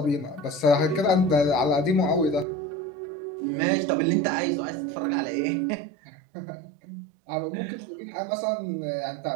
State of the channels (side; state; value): left; drops out; at 2.5 s